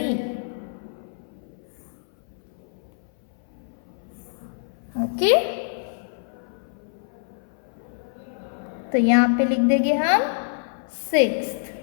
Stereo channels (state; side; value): silent; right; 57 dB below the other